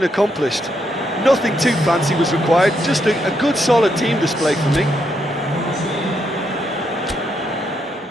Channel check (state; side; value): normal; both; correlation 0.78